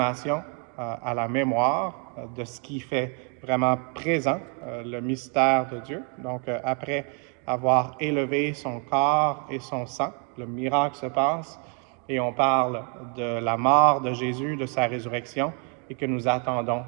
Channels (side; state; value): left; quieter; 37.7 dB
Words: à la mémoire de ce qui fait vraiment présent le mystère de Dieu. Donc, après avoir élevé son corps et son sang, le miracle se passe et on parle de la mort de Jésus, de sa résurrection et que nous attendons